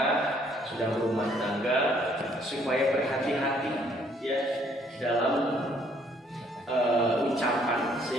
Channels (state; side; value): normal; both; correlation 0.65